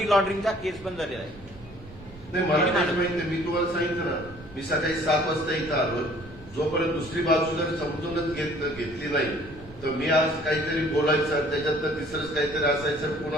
लॉन्ड्रिंगचा केस पण झालेला आहे. नाही, मला त्याची माहिती नाही. मी तुम्हाला सांगितलं ना, मी सकाळी 7 वाजता इथं आलो. जोपर्यंत दुसरी बाजू जर समजूनच घेतली नाही तर मी आज काहीतरी बोलायचं, त्याच्यात तर तिसरंच काहीतरी असायचं.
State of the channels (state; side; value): noise; right; rumble, 19 dB below the sound